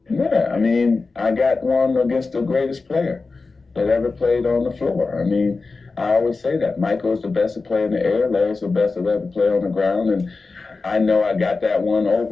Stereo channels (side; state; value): right; quieter; 4.0 dB